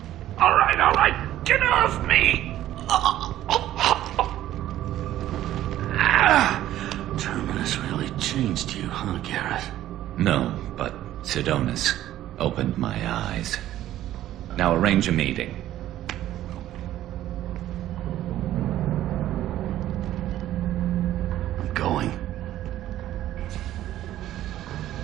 right. Get off me! Terminus really changed you, huh, Garrett? No, but Sidonus opened my eyes. Now arrange a meeting. I'm going.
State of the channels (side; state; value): left; quieter; 13.3 dB